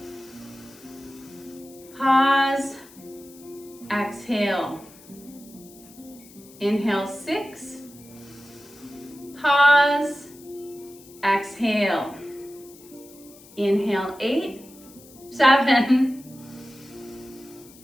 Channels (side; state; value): left; noise; hiss, 22 dB below the sound